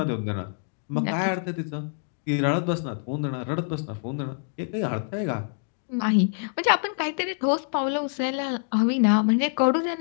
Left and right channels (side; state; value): right; silent; digital silence